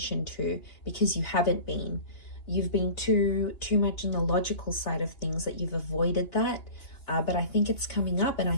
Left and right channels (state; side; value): late; right; 2.9 ms